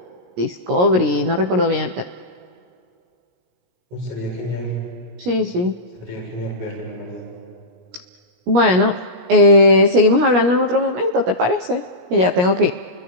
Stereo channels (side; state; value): left; late; 17 ms